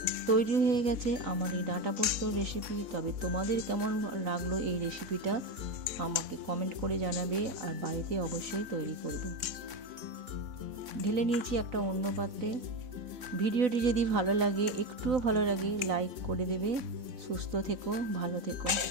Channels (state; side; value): late; left; 3.9 ms